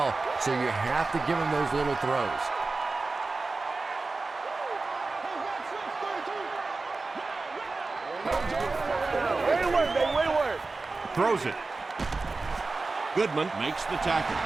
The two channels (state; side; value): quieter; left; 3.7 dB